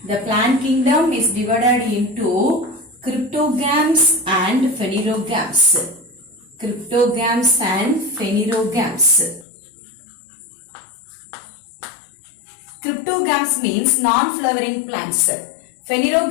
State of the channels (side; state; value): right; drops out; at 9.5 s